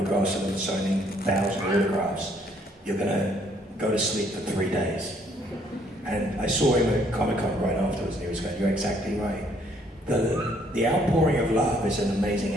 of them, signing 1,000 autographs, you're going to go to sleep for 3 days. And I saw him at Comic-Con right afterwards, and he was going, you're exactly right. The outpouring of love is an amazing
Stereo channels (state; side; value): normal; both; correlation 0.66